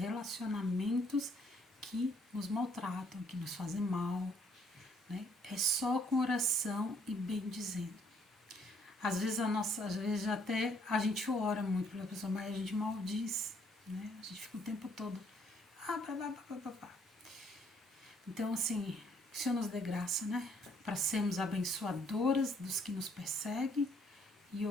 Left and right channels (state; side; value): normal; both; correlation 0.66